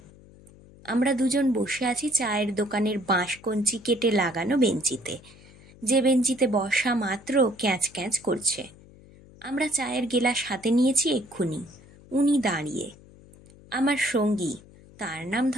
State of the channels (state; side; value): noise; left; hum, 23 dB below the sound